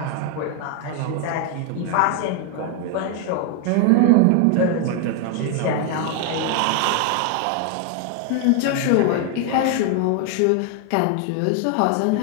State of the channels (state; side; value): different; both; correlation 0.00